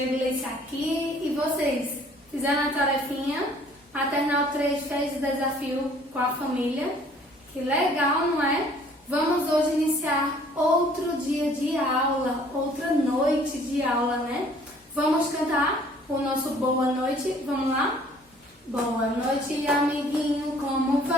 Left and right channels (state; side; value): normal; both; correlation 0.56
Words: Gleice aqui e vocês? Fizeram a tarefinha? Maternal 3 fez o desafio com a família? Que legal, não é? Vamos hoje iniciar outro dia de aula, outra noite de aula, né? Vamos cantar o nosso boa noite? Vamos lá? Boa noite, amiguinho, como